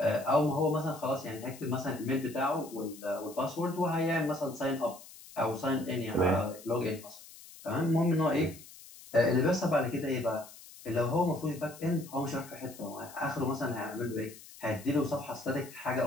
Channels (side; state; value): left; noise; hiss, 18 dB below the sound